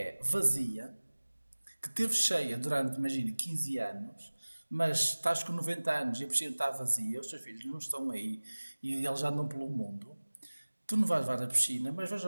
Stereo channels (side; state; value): both; inverted; correlation -1.00